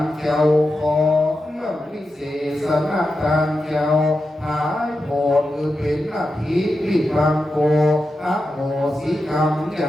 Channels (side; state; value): both; normal; correlation 0.89